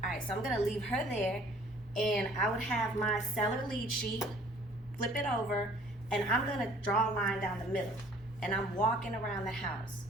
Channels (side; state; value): both; normal; correlation 0.55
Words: Alright, so I'm gonna leave her there and I would have my seller lead sheet, flip it over, and I'm gonna draw a line down the middle. And I'm walking around the house,